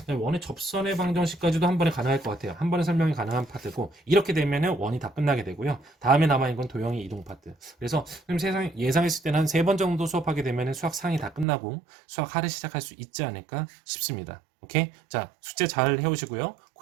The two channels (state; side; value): drops out; left; at 11.5 s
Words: 원의 접선의 방정식까지도 한 번에 가능할 것 같아요. 한 번에 설명이 가능한 파트고 이렇게 되면 원이 다 끝나게 되고요. 다음에 남아있는 건 도형의 이동 파트. 그래서 예상했을 때는 한 3번 정도 수업하게 되면 수학 상이 다 끝나고 수학 하를 시작할 수 있지 않을까 싶습니다. 오케이? 자, 숙제 잘 해오시고요.